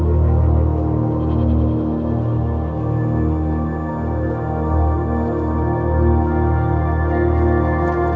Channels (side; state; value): both; identical; correlation 1.00